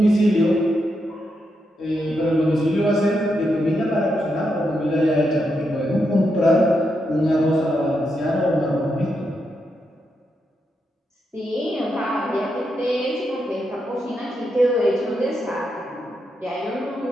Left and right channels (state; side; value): normal; both; correlation 0.83